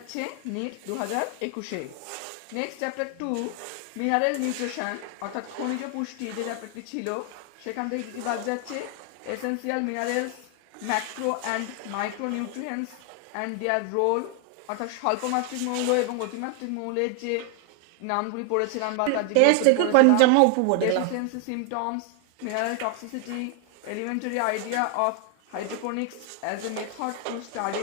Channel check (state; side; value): different; both; correlation 0.00